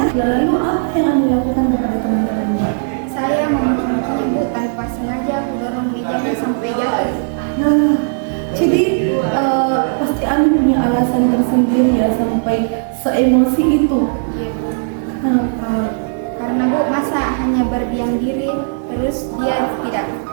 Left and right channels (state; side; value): silent; left; digital silence